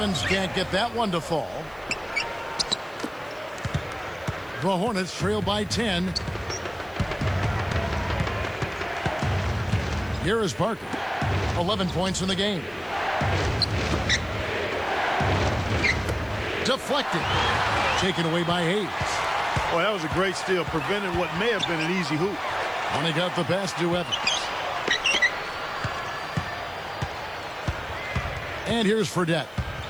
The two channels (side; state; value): left; noise; hiss, 27 dB below the sound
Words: can't get that one to fall. The Hornets trail by 10. Here is Parker. 11 points in the game. Deflected. Taken away by Hayes. Boy, that was a great steal. Prevented what may have been an easy hoop. And he got the pass to Evans. And here's Fredette.